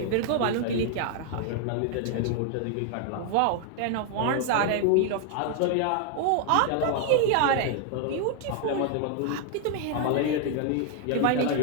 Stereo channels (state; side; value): different; both; correlation 0.00